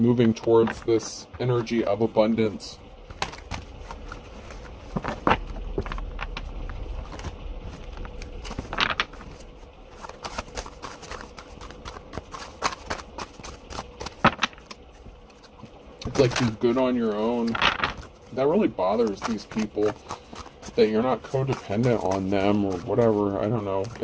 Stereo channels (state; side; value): identical; both; correlation 1.00